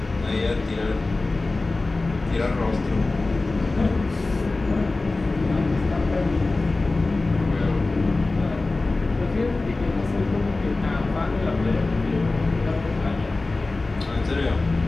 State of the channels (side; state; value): right; quieter; 3.3 dB